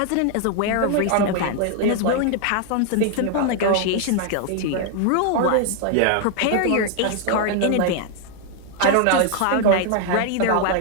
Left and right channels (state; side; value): different; both; correlation 0.00